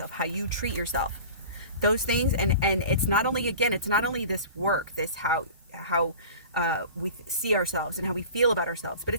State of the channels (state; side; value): inverted; both; correlation -0.39